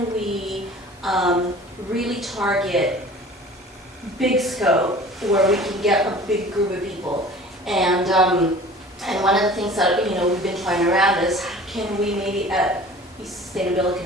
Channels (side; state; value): both; normal; correlation 0.44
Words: we really target big scope where we can get a big group of people. And one of the things that, we've been trying around is can we maybe at the Sustainability